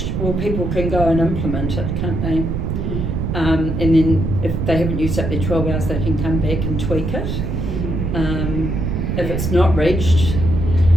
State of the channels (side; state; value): right; noise; rumble, 2 dB below the sound